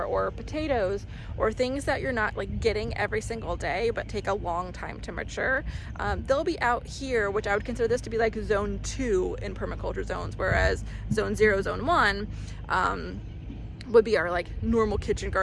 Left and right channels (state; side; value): identical; both; correlation 1.00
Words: or potatoes, or things that you're not like getting every single day but take a long time to mature, they'll be out here, which I would consider this to be like zone 2 in permaculture zones, whereas zone 0, zone 1 would be our like normal kitchen